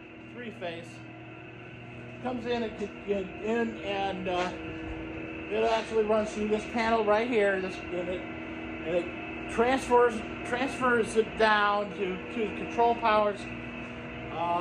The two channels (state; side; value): identical; both; correlation 1.00